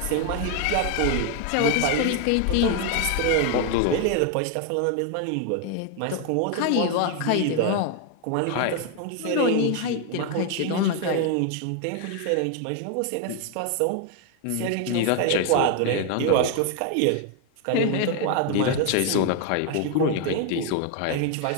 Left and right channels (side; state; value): both; different; correlation 0.01